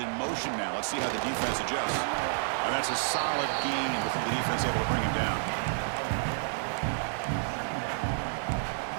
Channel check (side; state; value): left; silent; digital silence